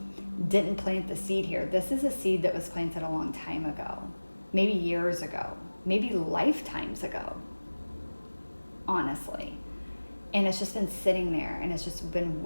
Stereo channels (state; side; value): inverted; both; correlation -1.00